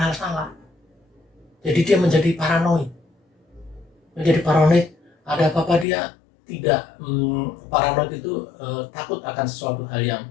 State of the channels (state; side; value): drops out; right; at 5.9 s